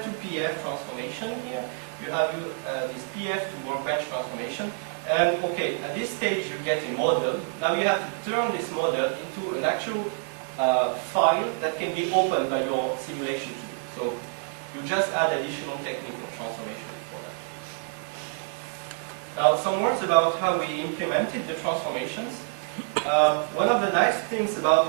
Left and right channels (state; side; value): silent; left; 60 dB below the other